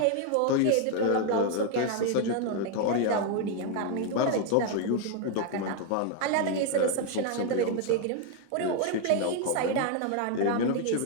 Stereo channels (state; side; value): different; both; correlation 0.01